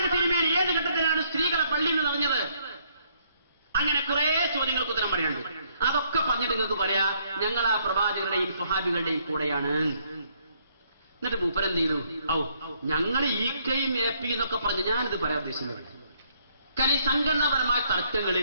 തിരുമേനി ഏത് ഘട്ടത്തിലാണ് സ്ത്രീകളെ പള്ളിയിൽ നിന്ന് നിറഞ്ഞത്? അങ്ങനെ കുറെ ചോദ്യങ്ങൾക്ക് ഉത്തരം പറയാനുണ്ട്. അതൊക്കെ പറഞ്ഞിട്ട് നിങ്ങൾക്ക് പറയാ, ഞങ്ങൾ ആ പ്രവാചകരുടെയും സ്വഹാബികളുടെയും കൂടെയാണ്. എന്നിട്ട് മൂപ്പരെന്ത് ചെയ്തു? ഞങ്ങൾ ഈക്കയും ഏപ്പിയും എന്നൊക്കെ പറഞ്ഞ് ഞാനിത് പറയാൻ ഉദ്ദേശിക്കുന്നത്. കാരണം ഈ സംഘടനാപരമായ തർക്കങ്ങൾ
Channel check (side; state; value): both; inverted; correlation -0.68